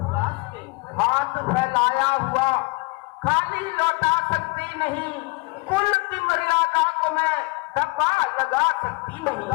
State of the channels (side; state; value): right; quieter; 26.9 dB